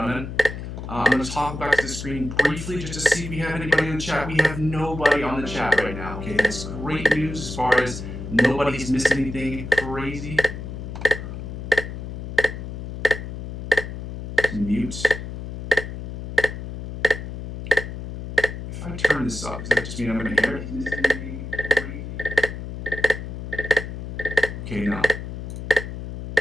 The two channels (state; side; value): noise; left; hum, 8 dB below the sound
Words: I'm going to talk back to the screen briefly just to see if we have anybody in the chat. We have nobody on the chat right now. Okay, that's great news as far as nobody's missed anything crazy. Mute. I turn this up? Does that just mean I'm going to hear it? Okay, now.